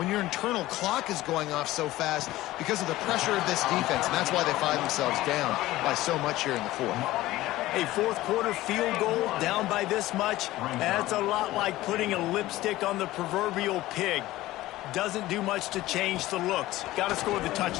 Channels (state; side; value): quieter; right; 16.8 dB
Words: your internal clock is going off so fast because of the pressure of this defense, and that's why they find themselves down by so much here in the fourth. A fourth quarter field goal down by this much, that's a lot like putting a lipstick on the proverbial pig. Doesn't do much to change the looks. Got to score the